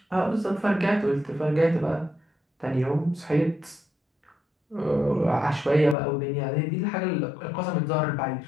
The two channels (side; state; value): right; drops out; at 6.0 s